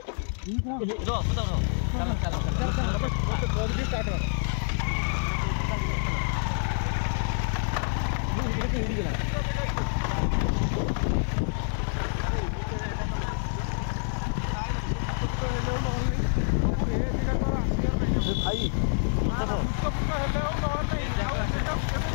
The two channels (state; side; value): silent; right; 60 dB below the other